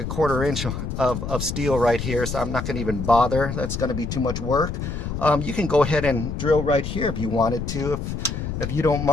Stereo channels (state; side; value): noise; left; rumble, 5 dB below the sound